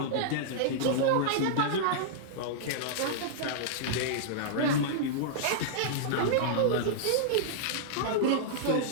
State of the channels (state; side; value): different; both; correlation -0.02